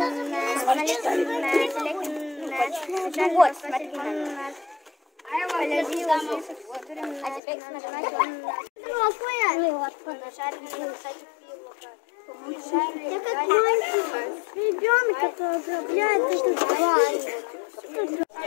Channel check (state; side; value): drops out; right; at 7.4 s